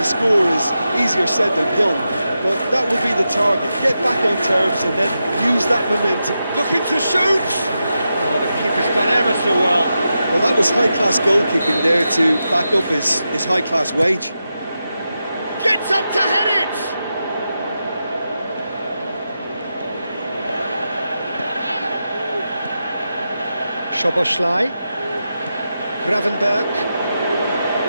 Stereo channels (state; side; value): inverted; both; correlation -0.89